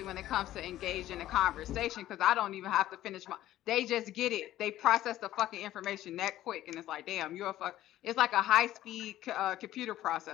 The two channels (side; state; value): right; quieter; 13.9 dB